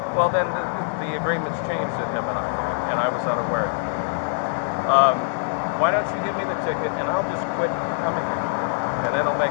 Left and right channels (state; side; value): silent; right; digital silence